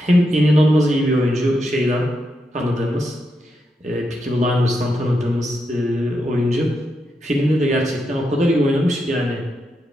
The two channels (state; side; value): normal; both; correlation 0.84